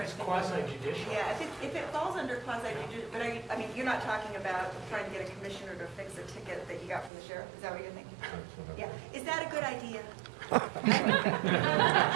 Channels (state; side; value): drops out; left; at 7.1 s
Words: It's to think. quasi-judicial. Yeah, if it falls under quasi-judicial, but I mean, you're not talking about trying to get a commissioner to fix a ticket that you got from the sheriff, is that what you're thinking? Yeah, is that a good idea? Are